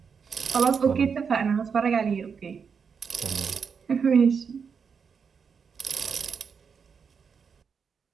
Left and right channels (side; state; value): left; quieter; 6.2 dB